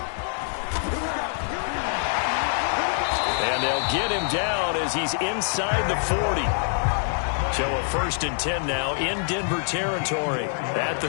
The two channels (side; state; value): right; silent; digital silence